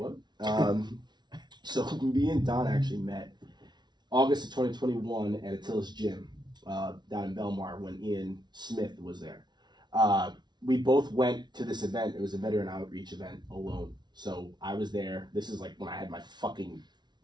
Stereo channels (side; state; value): left; late; 0.20 ms